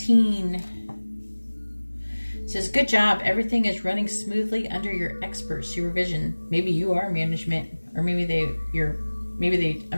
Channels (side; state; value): both; inverted; correlation -1.00